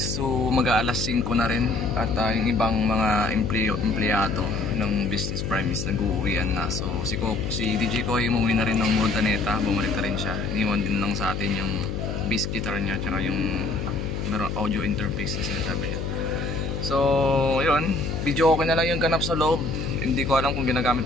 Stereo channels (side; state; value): left; noise; hum, 3 dB below the sound